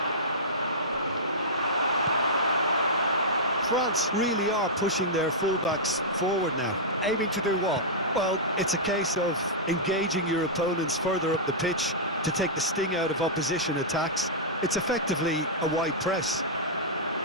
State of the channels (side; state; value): both; normal; correlation -0.13